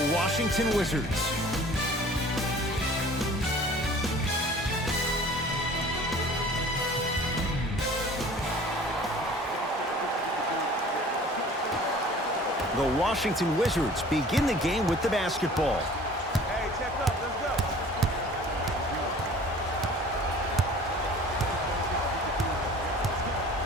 Washington Wizards. The Washington Wizards begin the game with the basketball. Hey, check up. Let's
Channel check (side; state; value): both; normal; correlation 0.47